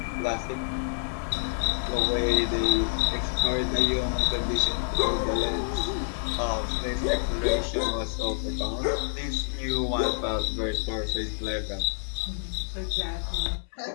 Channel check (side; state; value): right; silent; 60 dB below the other